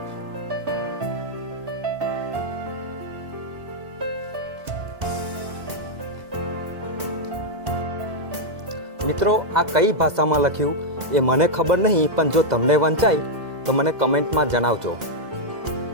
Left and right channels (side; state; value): left; late; 2.0 ms